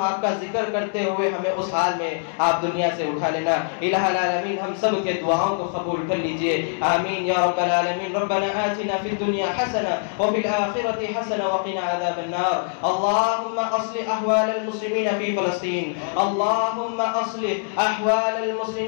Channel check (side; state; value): right; silent; 63 dB below the other